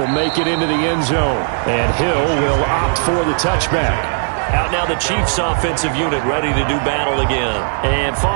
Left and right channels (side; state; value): left; silent; 67 dB below the other